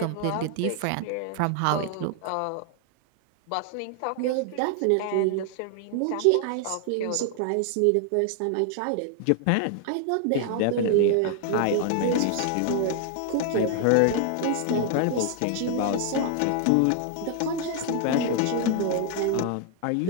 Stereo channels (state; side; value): different; both; correlation 0.00